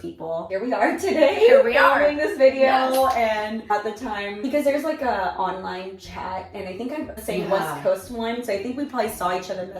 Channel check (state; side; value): identical; both; correlation 1.00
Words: people. Here we are today. Here we are filming this video. And at the time, because there's like a online chat, and I think I'm saying West Coast one, so I think we probably saw each other